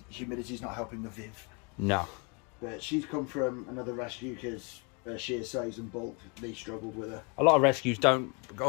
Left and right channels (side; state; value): right; quieter; 32.8 dB